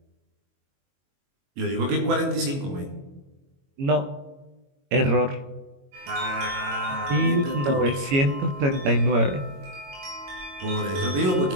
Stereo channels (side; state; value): left; late; 22 ms